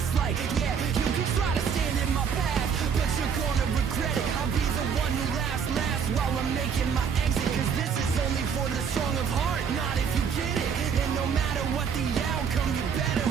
like. Yeah, you can try to stand in my path, but you're gonna regret it. I'll be the one who laughs last while I'm making my exit, cause this is only for the strong of heart, not if you get it. And no matter what the outcome, you better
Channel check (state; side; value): quieter; left; 6.8 dB